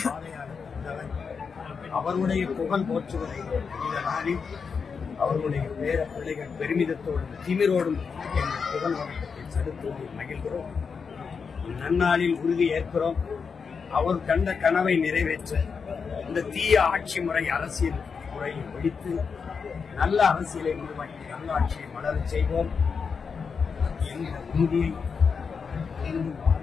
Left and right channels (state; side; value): quieter; right; 5.7 dB